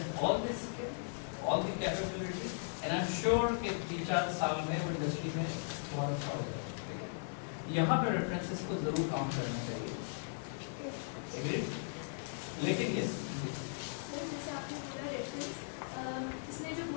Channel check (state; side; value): silent; right; digital silence